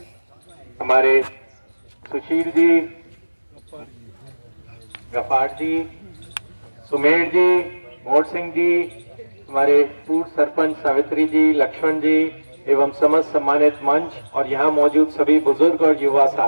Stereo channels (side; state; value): both; inverted; correlation -1.00